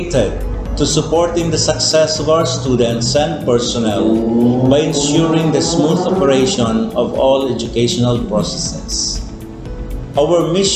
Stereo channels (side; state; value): both; identical; correlation 1.00